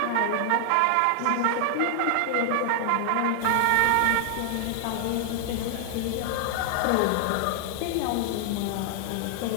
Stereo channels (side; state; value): both; different; correlation 0.00